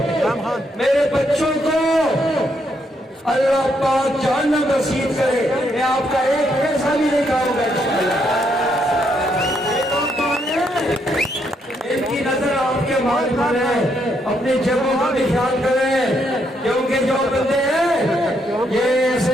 मेरे बच्चों को अल्लाह पाक जहन्नम नसीब करे। मैं आपका एक पैसा भी नहीं खाऊंगा इंशाअल्लाह। इनकी नजर आपके माल पर है, अपनी जगहों का भी ख्याल करें, क्योंकि जो बंदे हैं ये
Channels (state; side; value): normal; both; correlation 0.75